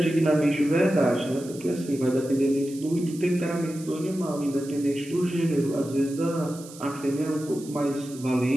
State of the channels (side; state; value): right; noise; hiss, 18 dB below the sound